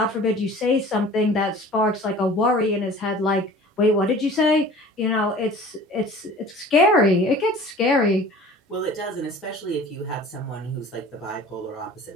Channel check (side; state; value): both; normal; correlation 0.44